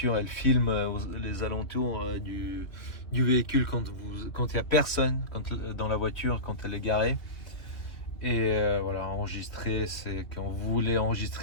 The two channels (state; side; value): late; right; 2.5 ms